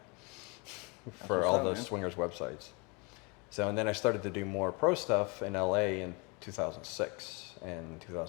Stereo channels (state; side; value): quieter; right; 30.7 dB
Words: for what's all up, those man. swingers websites. So, and then I started to do more pro stuff in LA in 2006 and